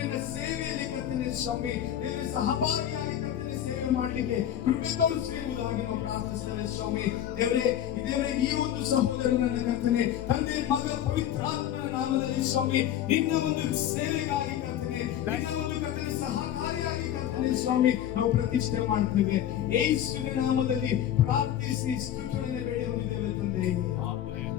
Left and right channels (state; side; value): quieter; right; 11.0 dB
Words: ಸೇವೆಯಲ್ಲಿ ಕರ್ತನೆ ಸ್ವಾಮಿ ದೇವರ ಸಹಭಾಗಿಯಾಗಿ ಕರ್ತನೆ ಸೇವೆ ಮಾಡಲಿಕ್ಕೆ ಕೃಪೆ ತೋರಿಸಿರುವುದಾಗಿ ನಾವು ಪ್ರಾರ್ಥಿಸ್ತೇವೆ ಸ್ವಾಮಿ. ದೇವರೇ ಈ ಒಂದು ಸಹೋದರನ ಕರ್ತನೆ ತಂದೆ ಮಗ ಪವಿತ್ರಾತ್ಮನ ನಾಮದಲ್ಲಿ ಸ್ವಾಮಿ ನಿನ್ನ ಒಂದು ಸೇವೆಗಾಗಿ ಕರ್ತನೆ, ನಿನ್ನ ಒಂದು ಕರ್ತನೆ ಸಹಕಾರಿಯಾಗಿ ಕರ್ತನೆ ಸ್ವಾಮಿ ನಾವು ಪ್ರತಿಷ್ಠೆ ಮಾಡ್ತೇವೆ. ಯೇಸುವಿನ ನಾಮದಲ್ಲಿ ಪ್ರಾರ್ಥಿಸಿ ಸ್ತುತಿಗಳನ್ನು ಬೇಡಿಕೊಂಡಿದ್ದೇವೆ ತಂದೆ.